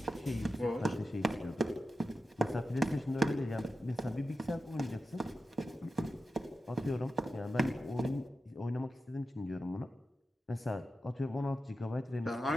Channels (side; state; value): both; normal; correlation 0.91